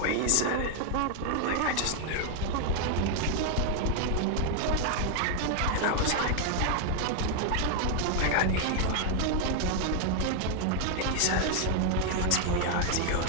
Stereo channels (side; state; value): both; different; correlation 0.00